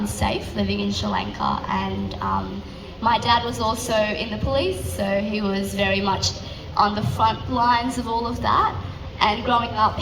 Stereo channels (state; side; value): identical; both; correlation 1.00